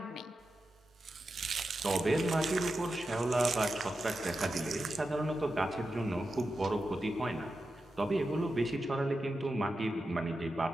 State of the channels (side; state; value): both; normal; correlation 0.90